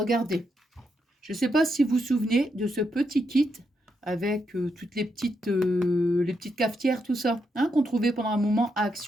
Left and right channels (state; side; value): normal; both; correlation 0.81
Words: je ne sais pas si vous vous souvenez de ce petit kit avec toutes les petites cafetières, tout ça, hein, qu'on trouvait pendant un moment à